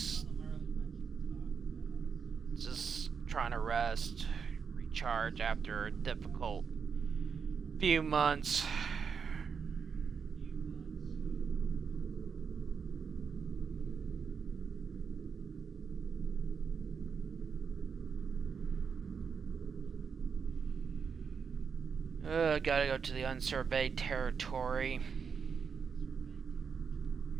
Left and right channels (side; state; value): left; quieter; 6.1 dB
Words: trying to rest, recharge after a difficult few months. Gotta go to the unsurveyed territory.